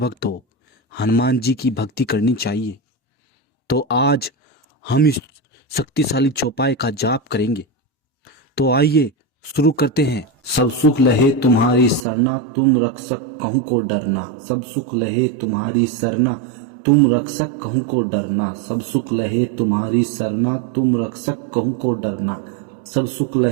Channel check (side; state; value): left; drops out; at 12.1 s